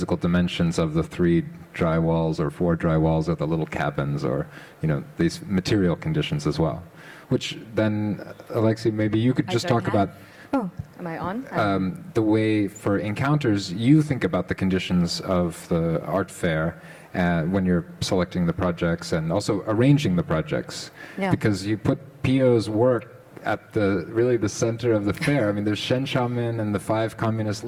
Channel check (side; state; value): both; identical; correlation 1.00